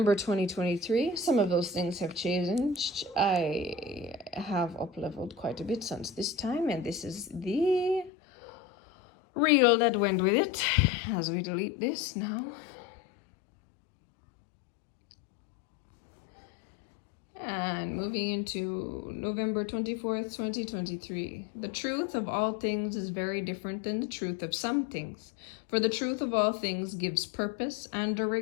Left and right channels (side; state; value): right; drops out; at 8.1 s